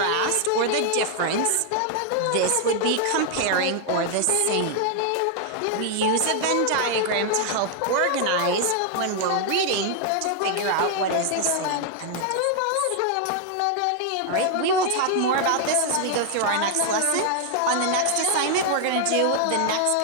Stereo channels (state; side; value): different; both; correlation 0.00